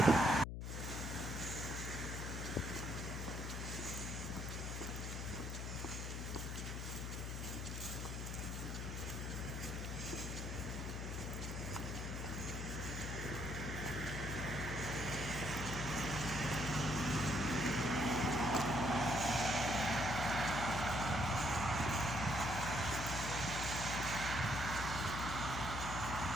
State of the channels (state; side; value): noise; left; hum, 4 dB below the sound